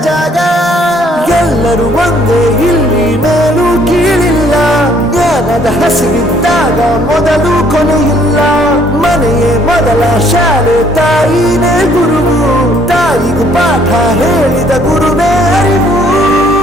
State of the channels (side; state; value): both; normal; correlation 0.63